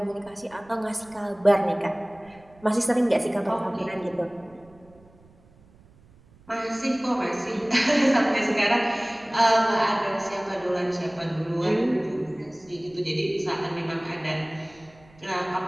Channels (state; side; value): noise; right; rumble, 27 dB below the sound